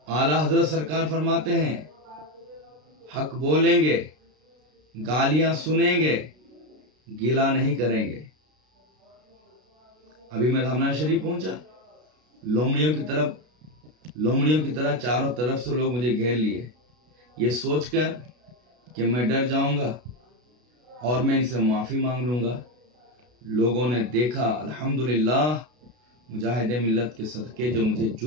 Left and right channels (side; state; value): left; late; 33 ms